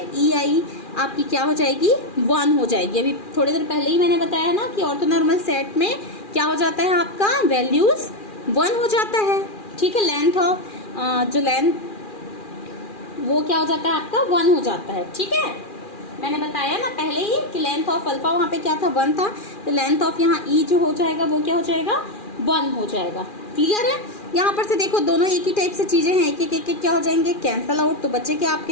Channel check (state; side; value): late; right; 2.4 ms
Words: ई आई आपकी क्या हो जाएगी, 1 हो जाएगी। अभी थोड़ी देर पहले ही मैंने बताया ना कि ऑर्थोनॉर्मल सेट में क्या हो जाता है, आपका वैल्यूज 1 हो जाता है। ठीक है, लेंथ ऑफ जो लेंथ वो क्या हो जाता है, आपका 1 हो जाता है। ठीक है, मैंने बताया ना पहले ही कि लेंथ ऑफ अल्फा वहाँ पे क्या था, 1 था, तो लेंथ ऑफ यहाँ ई जो हो जाएगा वो क्या हो जाएगा, 1 हो जाएगा। क्लियर है। यहाँ पर से देखो दोनों एक ही टाइप से चीजें हैं, एक एक क्या हो जाएंगे, कैंसल आउट। तो बचेगा